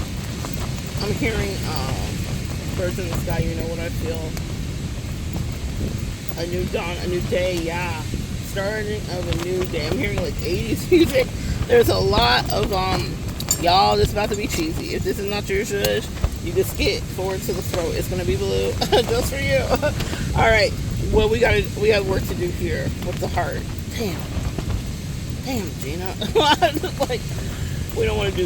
I'm hearing birds in the sky, you know what I feel. A new dawn, a new day, yeah. Starting of a new day. I'm hearing like 80s music. There's a lot of, y'all, this is about to be cheesy. If this is not your zhuzh, you can skip forward to the throat. It's going to be blue just for you. All right. Well, we got work to do here with the heart. Damn, Gina. Like, we don't want to do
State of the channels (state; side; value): identical; both; correlation 1.00